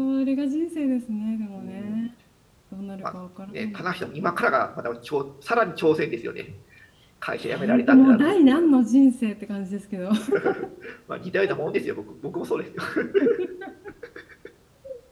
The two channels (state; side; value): identical; both; correlation 1.00